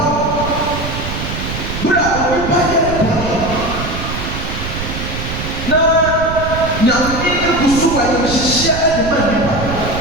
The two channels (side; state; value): right; noise; rumble, 6 dB below the sound